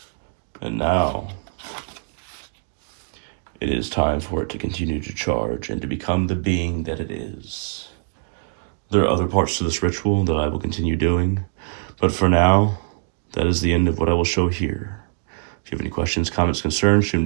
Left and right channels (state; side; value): silent; left; 57 dB below the other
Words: And now, it is time for it to continue to charge and to become the being that it is. There are other parts to this ritual that I will continue doing, but for now, that is the end of what I will show here. If you have any questions, comments, concerns, shoot them